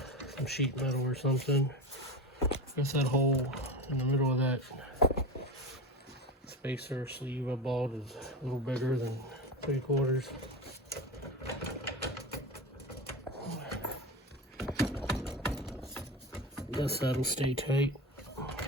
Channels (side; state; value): both; normal; correlation 0.25